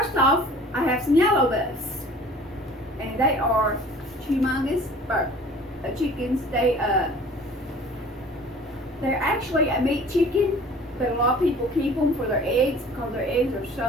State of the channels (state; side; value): normal; both; correlation 0.47